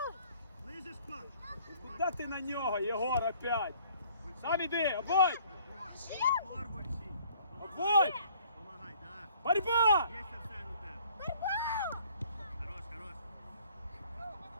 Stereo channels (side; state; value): both; inverted; correlation -0.58